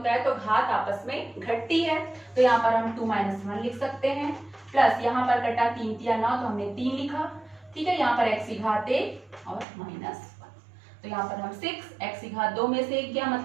है तो घात आपस में घटती है, तो यहाँ पर हम 2 - 1 लिख सकते हैं। प्लस यहाँ पर कटा 3 तिया 9, तो हमने 3 लिखा। ठीक है, यहाँ पर x की घात 1 और -1, तो यहाँ पर हम 6, x की घात 2 में से 1 गया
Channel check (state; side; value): drops out; left; at 9.7 s